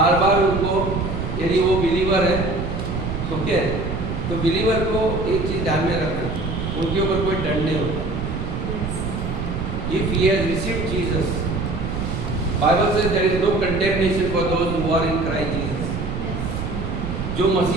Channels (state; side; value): noise; right; rumble, 4 dB below the sound